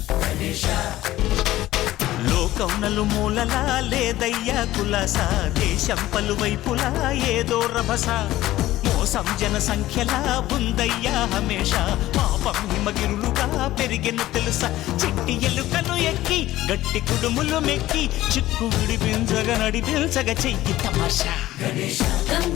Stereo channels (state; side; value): quieter; right; 15.5 dB